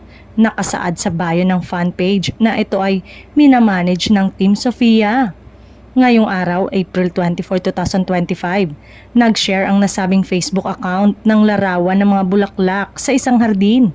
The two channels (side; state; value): both; identical; correlation 1.00